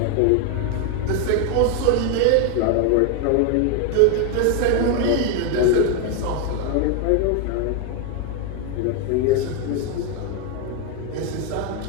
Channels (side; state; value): both; different; correlation 0.01